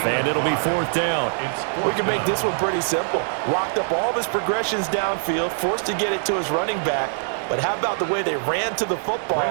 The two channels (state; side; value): silent; left; digital silence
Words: And it'll be 4th down. We can make this one pretty simple. Locked up all of his progressions downfield, forced to get it to his running back. But how about the way they ran to the